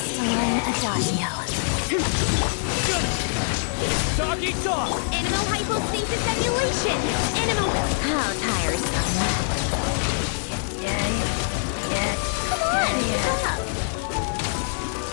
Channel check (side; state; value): right; silent; 62 dB below the other